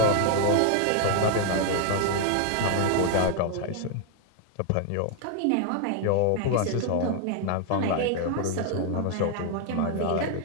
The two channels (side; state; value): both; different; correlation 0.00